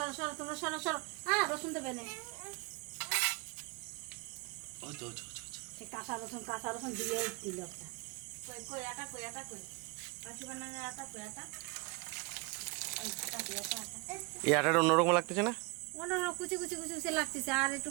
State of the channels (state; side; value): quieter; left; 28.1 dB